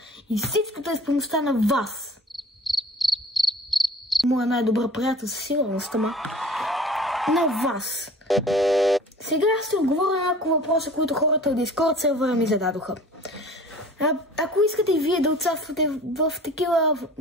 и всичкото е с помощта на вас. Моя най-добър приятел със сигурност, ама на вас. Сега ще отговоря на няколко въпроса, които хората от Discord сервера ми зададоха. Ако искате и вие да участвате в такива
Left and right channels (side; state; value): both; normal; correlation 0.45